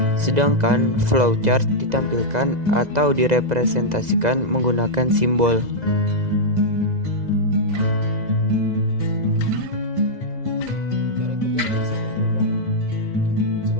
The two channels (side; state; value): left; late; 2.0 ms